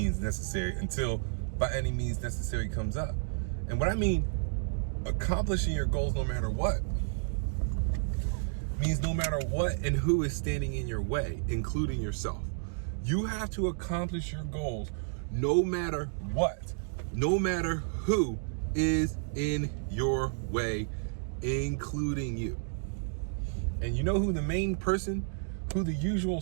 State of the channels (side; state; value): left; silent; digital silence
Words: necessary until by any means necessary comes up. And what I mean, accomplishing your goals no matter what, means no matter what and who is standing in your way, including yourself. You have to accomplish your goals no matter what, no matter who is in your way, including you. And you know who the main person, who the usual